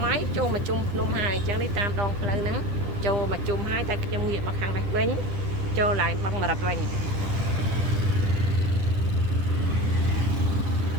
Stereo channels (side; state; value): left; late; 9.9 ms